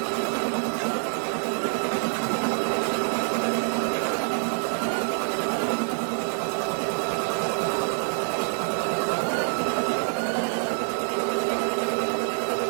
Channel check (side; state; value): left; silent; 61 dB below the other